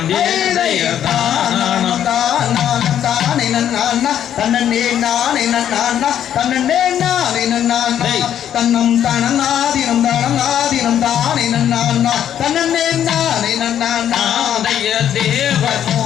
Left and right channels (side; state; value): right; quieter; 10.1 dB